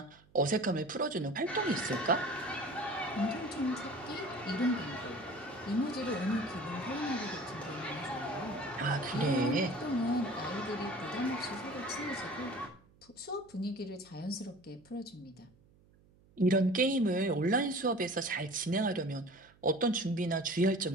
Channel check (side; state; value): right; noise; hum, 29 dB below the sound